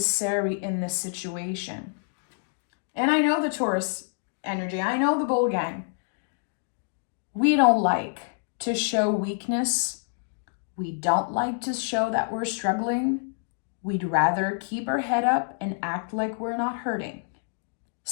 in this situation. And I know the Taurus energy. I know the bull gang. We don't like to show weakness. We don't like to show that we're struggling. We'd rather keep our head up and act like we're not hurting.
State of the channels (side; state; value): right; silent; digital silence